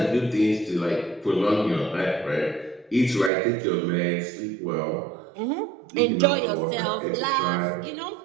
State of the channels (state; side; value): drops out; left; at 3.3 s